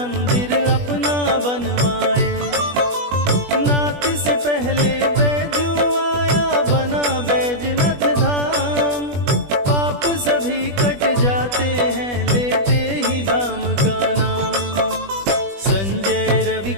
अपना बनवाए। नाथ से पहले बैजू आया, बना बैजनाथ धाम। पाप सभी कट जाते हैं लेते ही धाम का नाम। संजय रवि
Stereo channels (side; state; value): left; late; 20 ms